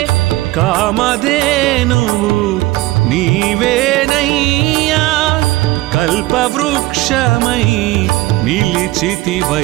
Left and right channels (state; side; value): quieter; left; 18.5 dB